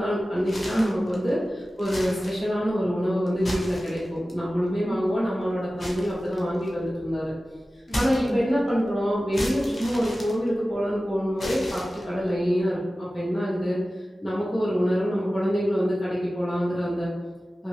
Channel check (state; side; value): normal; both; correlation 0.95